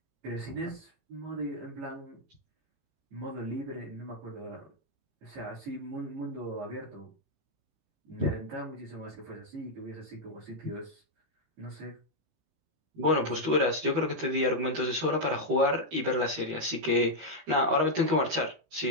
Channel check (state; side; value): late; left; 18 ms